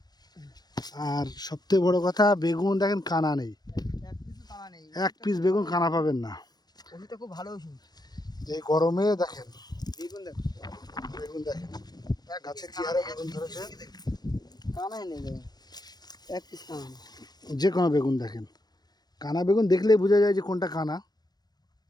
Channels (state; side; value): late; right; 0.19 ms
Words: আর সবথেকে বড় কথা, বেগুন দেখেন কানা নেই, এক পিস বেগুন কানা পাবেন না। খুব ভালো। এই গরমে দেখেন বেগুন দেখেন গাছে কি হারে বেগুন ধরেছে। কানাই নেই, এক পিস কানা। যে কোনো বেগুন দেখেন, কানা বেগুন দেখলেই বোঝা যায় যে কোনটা কানা।